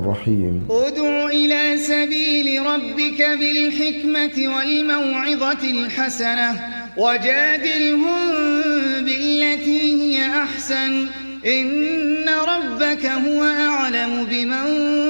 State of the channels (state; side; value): inverted; both; correlation -1.00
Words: ادع إلى سبيل ربك بالحكمة والموعظة الحسنة وجادلهم بالتي هي أحسن إن ربك هو أعلم بمن